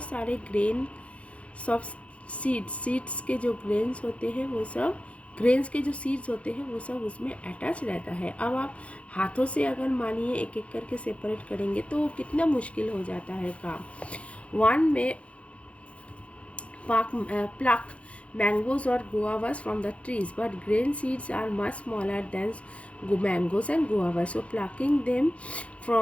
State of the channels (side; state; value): right; late; 0.063 ms